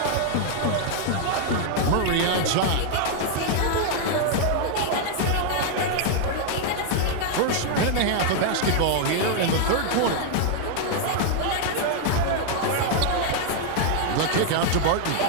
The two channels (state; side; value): different; both; correlation 0.00